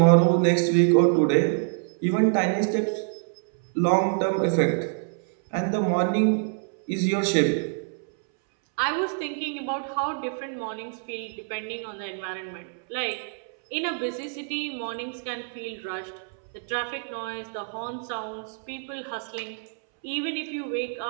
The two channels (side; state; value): left; silent; 61 dB below the other